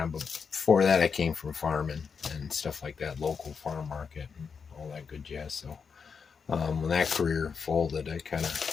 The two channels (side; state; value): right; quieter; 5.9 dB